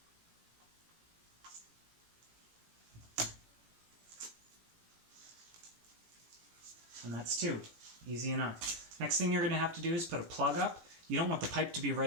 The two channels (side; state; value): left; late; 18 ms